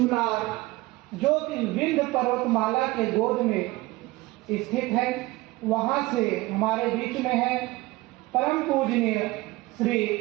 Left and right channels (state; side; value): quieter; left; 20.4 dB